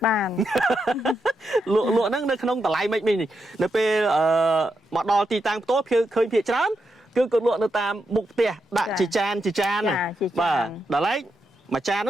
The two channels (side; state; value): both; normal; correlation 0.84